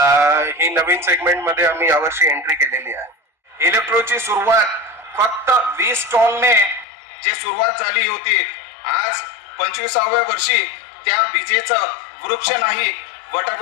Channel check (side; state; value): right; drops out; at 6.9 s